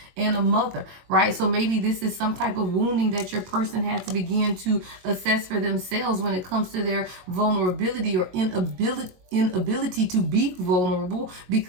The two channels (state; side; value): late; left; 22 ms